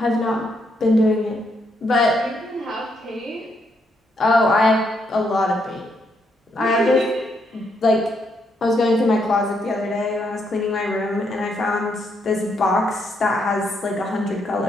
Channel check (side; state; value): both; normal; correlation 0.76